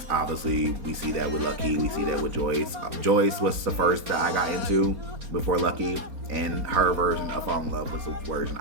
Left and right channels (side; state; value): left; late; 4.3 ms